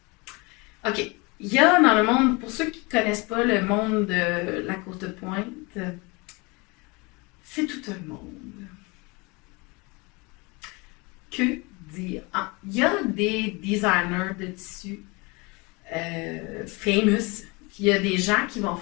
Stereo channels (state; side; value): quieter; right; 27.1 dB